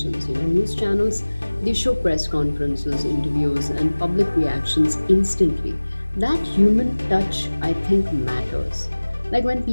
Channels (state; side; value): inverted; both; correlation -1.00